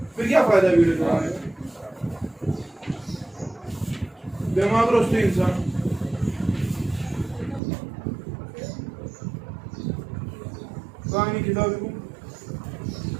फिर क्या फायदा वीडियो चढ़ाने का? दिमाग रोस्ते इंसान कहानी किताब को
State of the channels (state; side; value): drops out; left; at 7.6 s